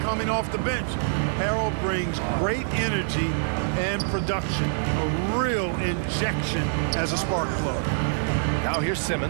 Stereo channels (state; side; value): silent; left; digital silence